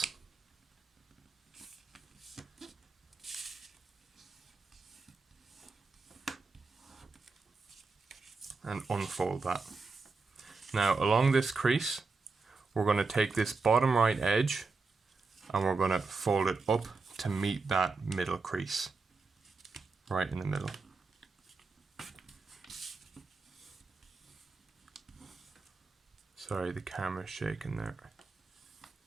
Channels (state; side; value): quieter; left; 4.2 dB